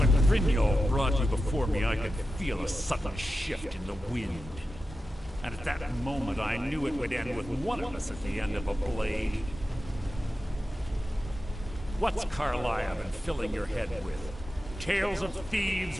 Brynjolf brought you before me, I could feel a sudden shift in the wind. And at that moment, I knew it would end with one of us at the end of a blade. What's Carlisle been filling your head with? Tales of thieves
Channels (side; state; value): both; normal; correlation 0.92